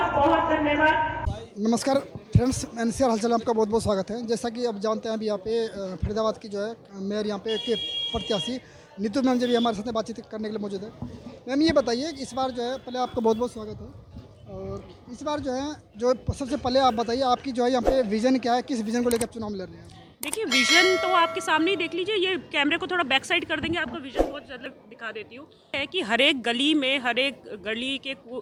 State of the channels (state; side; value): identical; both; correlation 1.00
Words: बहुत धन्यवाद। नमस्कार फ्रेंड्स, एनसीआर हलचल में आपका बहुत बहुत स्वागत है। जैसा कि अब जानते हैं, अभी यहाँ पे फरीदाबाद की जो है मेयर यहाँ पे के प्रत्याशी नीतू मैम जी भी हमारे साथ बातचीत करने के लिए मौजूद है। मैम ये बताइए कि इस बार जो है, पहले आपका बहुत बहुत स्वागत है, और इस बार जो है, जो सबसे पहले आप बताइए आपकी जो है यहाँ पे विजन क्या है, किस विजन को लेकर आप चुनाव लड़ रहे हैं? देखिए, विजन तो आपके सामने ही देख लीजिए। ये कैमरे को थोड़ा बैक साइड कर देंगे, आपको विजन बहुत ज़्यादा दिखा देती हूँ। है कि हर एक गली में, हर एक गली के